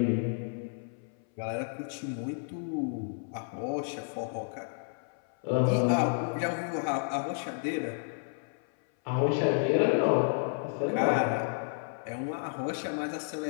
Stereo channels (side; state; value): right; silent; 57 dB below the other